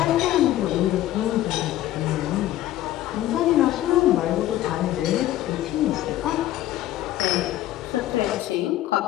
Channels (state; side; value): quieter; right; 14.0 dB